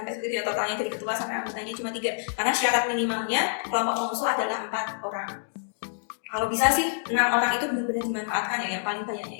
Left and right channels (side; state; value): right; silent; digital silence